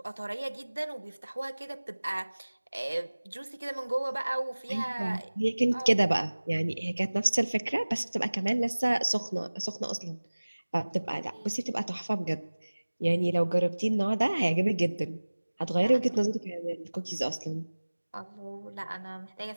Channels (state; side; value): inverted; both; correlation -1.00